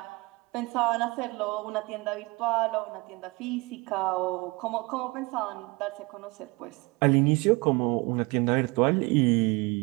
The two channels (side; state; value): left; quieter; 25.4 dB